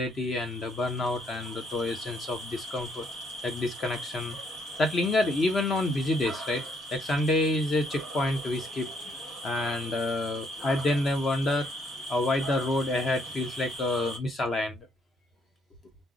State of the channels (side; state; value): both; normal; correlation 0.70